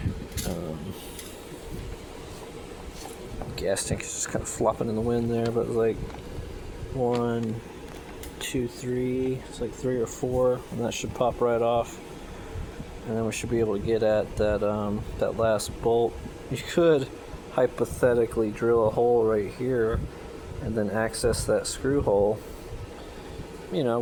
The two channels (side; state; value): both; identical; correlation 1.00